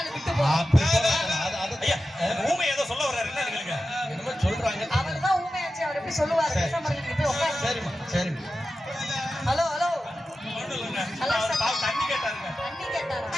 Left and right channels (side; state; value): both; normal; correlation 0.93